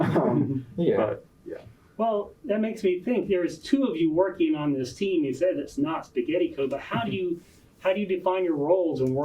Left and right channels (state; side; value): identical; both; correlation 1.00